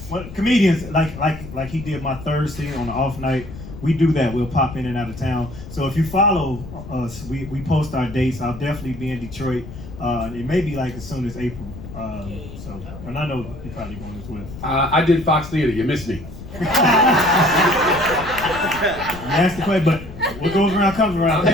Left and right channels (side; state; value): left; noise; rumble, 13 dB below the sound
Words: What comedians like he did my Thursday on the off night. We do that. We'll pop in and out of town. So if you follow us, we post our dates. I'll definitely be in Detroit. It may be like as soon as April. So, and I know you're probably going as well. I did Fox Theater. You missed me. You asked the question, but what goes around comes around. I'll